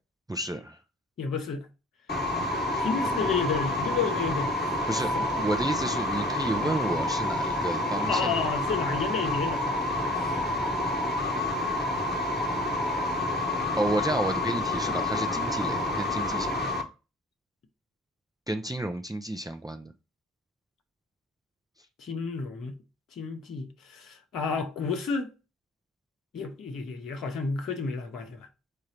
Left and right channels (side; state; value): both; normal; correlation 0.46